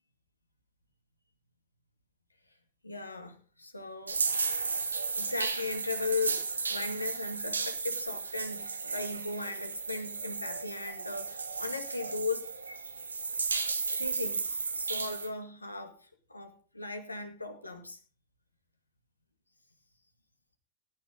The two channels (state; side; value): inverted; both; correlation -0.77